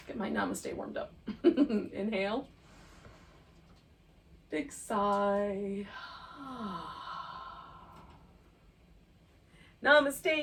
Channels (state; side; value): identical; both; correlation 1.00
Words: Get my Namaste warmed up. Inhale. Big sigh.